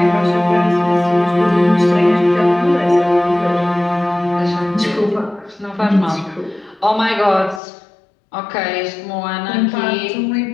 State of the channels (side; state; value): right; drops out; at 7.6 s